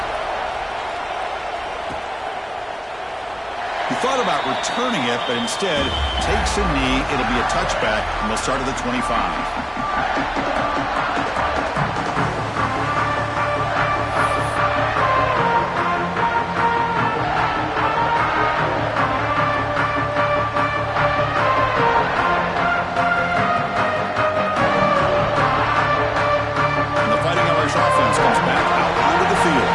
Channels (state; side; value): identical; both; correlation 1.00